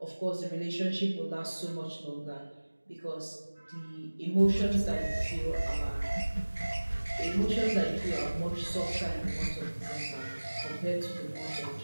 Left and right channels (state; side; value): inverted; both; correlation -1.00